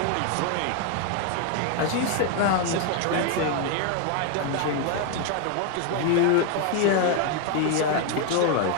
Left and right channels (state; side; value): different; both; correlation 0.01